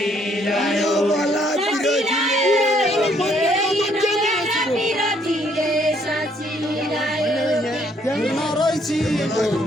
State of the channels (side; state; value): both; normal; correlation 0.67